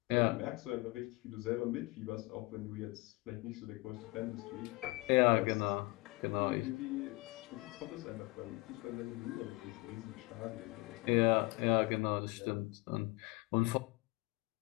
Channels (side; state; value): right; quieter; 24.1 dB